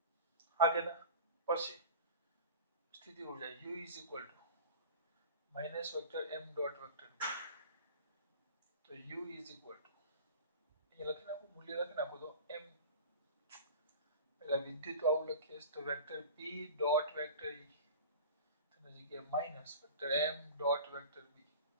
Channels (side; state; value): both; inverted; correlation -0.35